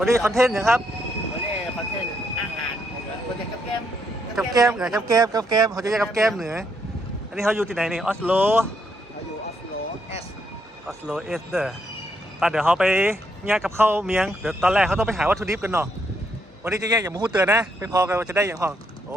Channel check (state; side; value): normal; both; correlation 0.75